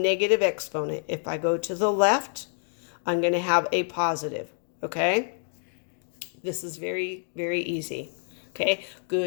exponent. If I go to the left, I'm going to have a positive. Okay? This is very, very easy. Okay?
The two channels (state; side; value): silent; right; digital silence